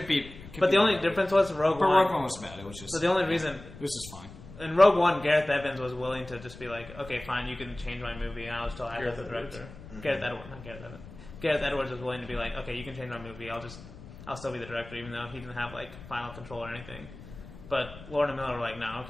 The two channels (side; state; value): left; noise; rumble, 16 dB below the sound